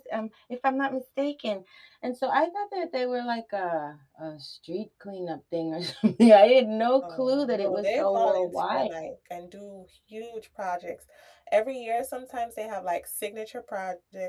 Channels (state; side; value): identical; both; correlation 1.00